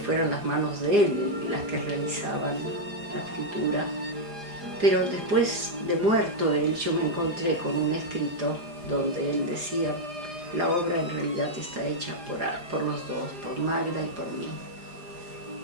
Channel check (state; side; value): late; left; 4.9 ms